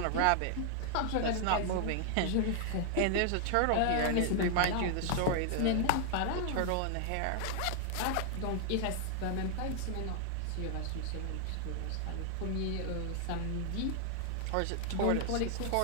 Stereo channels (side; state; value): both; different; correlation -0.01